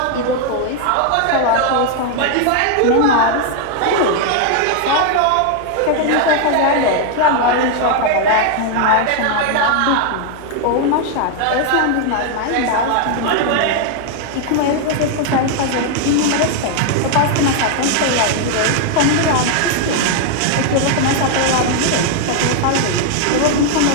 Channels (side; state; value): both; different; correlation 0.00